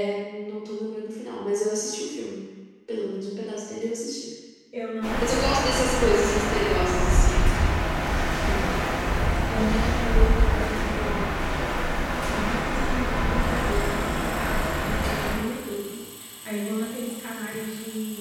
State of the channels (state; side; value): identical; both; correlation 1.00